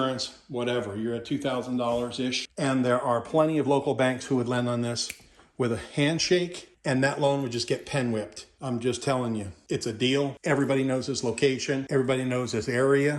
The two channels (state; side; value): identical; both; correlation 1.00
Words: whatever. You're at $2,000-ish. And there are plenty of local banks who would lend on this with a handshake, and that loan would just get pen whipped. I'm just telling you, it's a deal. Everybody knows this location. Everybody knows this